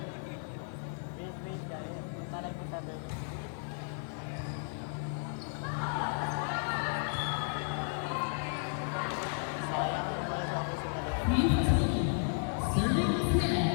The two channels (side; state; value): right; silent; 55 dB below the other